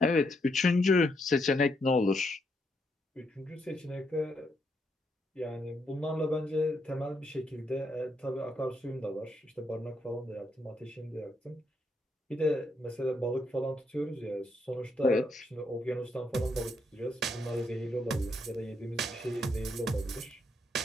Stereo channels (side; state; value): both; normal; correlation 0.77